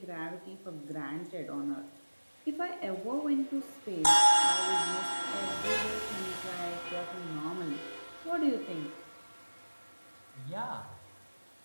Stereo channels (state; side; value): inverted; both; correlation -1.00